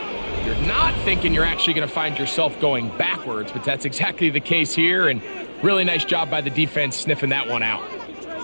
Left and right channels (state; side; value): inverted; both; correlation -1.00